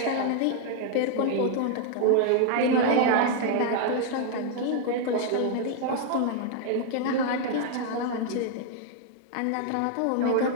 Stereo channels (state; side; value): different; both; correlation 0.00